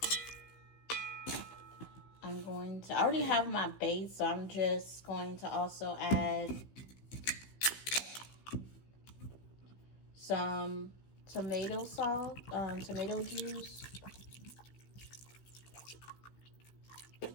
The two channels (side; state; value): right; late; 15 ms